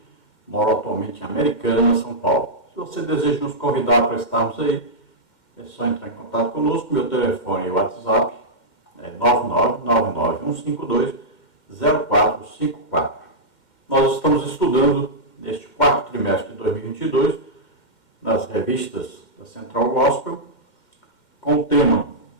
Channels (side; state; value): right; late; 2.1 ms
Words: moro atualmente em Americana, São Paulo. Se você deseja nos convidar para estarmos aí, é só entrar em contato conosco. Meu telefone e WhatsApp é 999-152-0454. Nós estamos estudando neste quarto trimestre de 2022, nas revistas da Central Gospel, com o tema